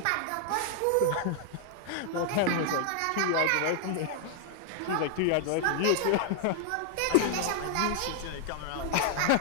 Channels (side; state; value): both; different; correlation 0.00